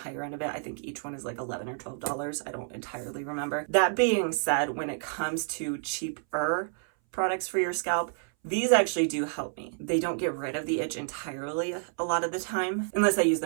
end of it. I think each one is like $11 or $12. I don't entirely remember. That being said, when it comes to cheaper products for your scalp, these actually do help me. They don't get rid of the itch entirely a lot of the time, unless I use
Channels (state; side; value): silent; left; 58 dB below the other